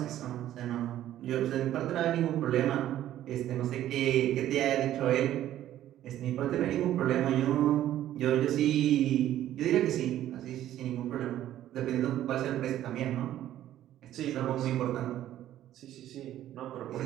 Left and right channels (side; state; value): left; quieter; 12.6 dB